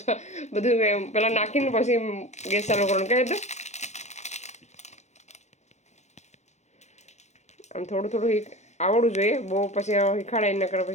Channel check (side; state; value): right; late; 0.33 ms